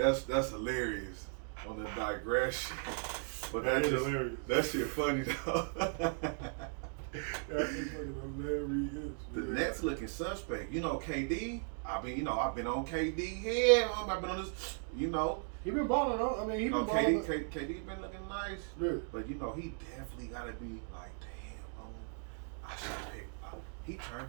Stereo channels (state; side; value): silent; left; 53 dB below the other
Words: that's hilarious on the digression. But That is just hilarious. that shit funny though. That is fucking hilarious. The Nets looking suspect. You know, KD. I've been on KD here. I've been on this. You know, He been balling on. I mean, he been KD balling. KD been looking nice. Yeah. But you know, he definitely gotta be like, damn, I should pick. He turned